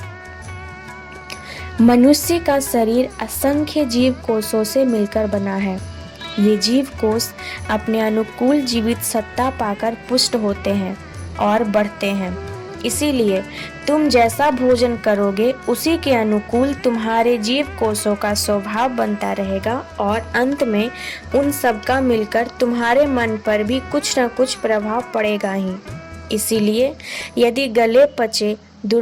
मनुष्य का शरीर असंख्य जीव कोषों से मिलकर बना है। ये जीव कोष अपने अनुकूल जीवित सत्ता पाकर पुष्ट होते हैं और बढ़ते हैं। इसीलिए तुम जैसा भोजन करोगे उसी के अनुकूल तुम्हारे जीव कोषों का स्वभाव बनता रहेगा और अंत में उन सब का मिलकर तुम्हारे मन पर भी कुछ न कुछ प्रभाव पड़ेगा ही। इसीलिए यदि गले पचे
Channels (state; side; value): identical; both; correlation 1.00